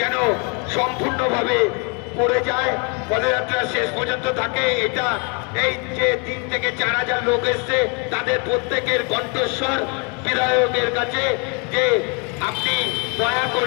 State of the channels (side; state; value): right; quieter; 34.5 dB